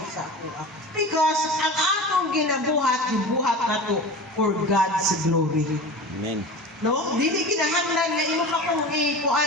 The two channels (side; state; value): both; normal; correlation 0.32